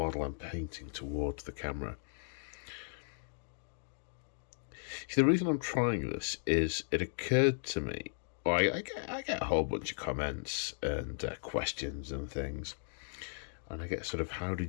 I'm painting towards the camera. See, the reason I'm trying this is it occurred to me, well, I get a whole bunch of comments and questions and things, and I get sort of, how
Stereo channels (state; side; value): silent; right; digital silence